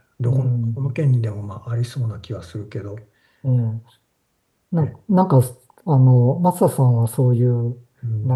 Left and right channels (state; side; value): identical; both; correlation 1.00